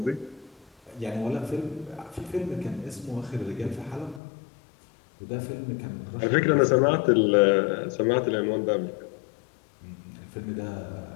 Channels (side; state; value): right; drops out; at 4.2 s